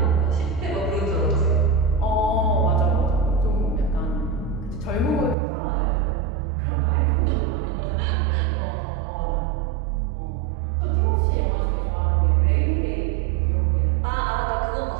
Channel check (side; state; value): left; drops out; at 5.4 s